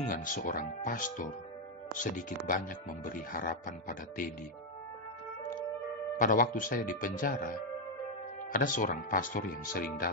seorang pastor sedikit banyak memberi harapan pada Teddy. Pada waktu saya di penjara, ada seorang pastor yang sering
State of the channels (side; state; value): both; normal; correlation 0.01